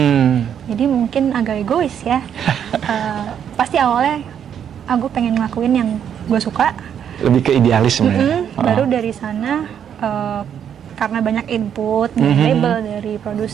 Jadi mungkin agak egois ya. Pasti awalnya aku pengen ngelakuin yang gue suka. Lebih ke idealis sebenarnya. Baru dari sana karena banyak input dari label, dari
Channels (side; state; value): left; quieter; 8.8 dB